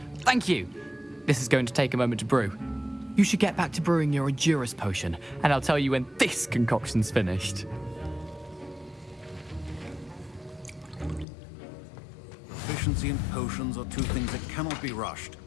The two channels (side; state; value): right; drops out; at 11.2 s